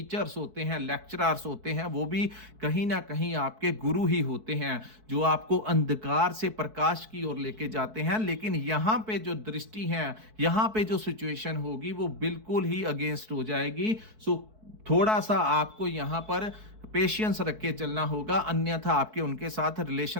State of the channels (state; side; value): late; left; 4.6 ms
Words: होते हैं, लेक्चरर्स होते हैं, वो भी कहीं ना कहीं आपके गुरु ही होते हैं, जो आपको अंधकार से प्रकाश की ओर लेके जाते हैं। लेकिन यहाँ पे जो दृष्टि है, यहाँ पे जो सिचुएशन होगी वो बिल्कुल ही अगेंस्ट हो जाएगी। सो थोड़ा सा आपको यहाँ पर पेशेंस रख के चलना होगा, अन्यथा आपके उनके साथ